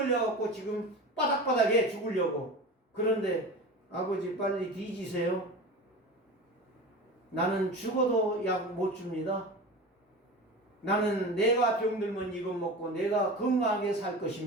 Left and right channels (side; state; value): both; normal; correlation 0.31